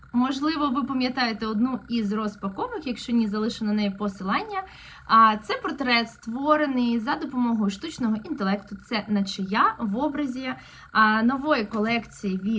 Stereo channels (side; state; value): both; identical; correlation 1.00